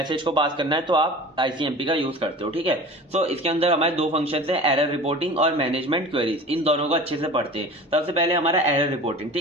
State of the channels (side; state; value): both; normal; correlation 0.38